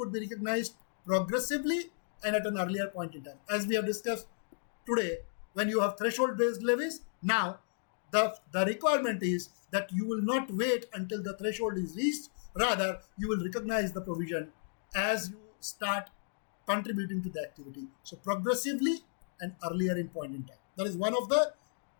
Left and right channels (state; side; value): silent; right; digital silence